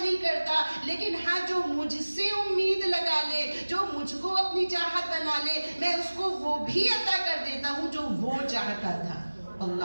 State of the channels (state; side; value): inverted; both; correlation -1.00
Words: کرتا. لیکن ہاں جو مجھ سے امید لگا لے، جو مجھ کو اپنی چاہت بنا لے، میں اس کو وہ بھی عطا کر دیتا ہوں جو وہ چاہتا تھا.